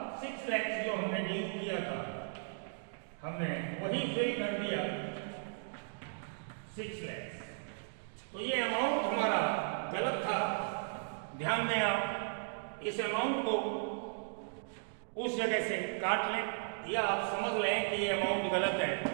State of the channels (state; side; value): silent; left; digital silence